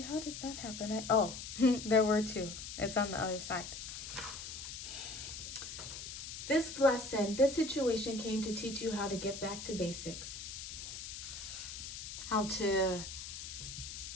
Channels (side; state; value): left; noise; hiss, 8 dB below the sound